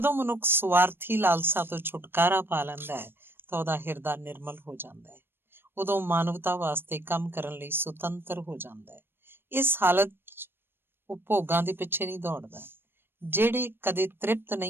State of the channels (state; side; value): late; left; 0.10 ms